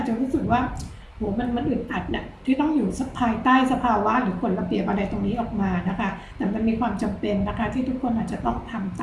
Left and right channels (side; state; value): both; identical; correlation 1.00